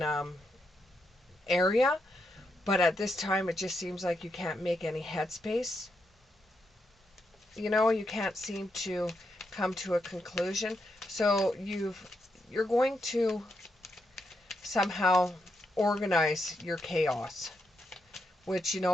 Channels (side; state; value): both; normal; correlation 0.82